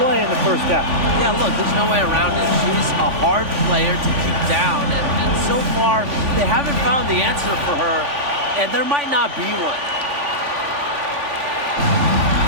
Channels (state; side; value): late; left; 3.5 ms